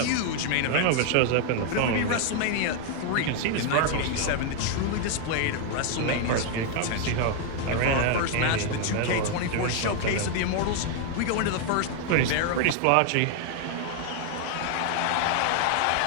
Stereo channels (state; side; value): different; both; correlation 0.00